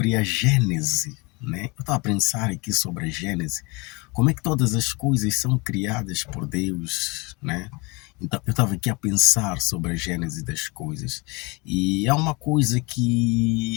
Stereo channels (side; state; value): right; quieter; 27.3 dB